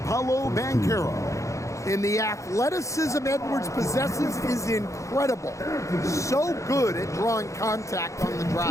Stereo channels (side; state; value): right; late; 0.15 ms